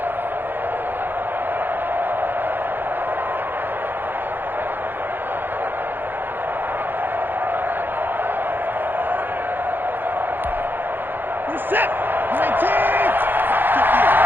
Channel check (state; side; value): late; left; 0.094 ms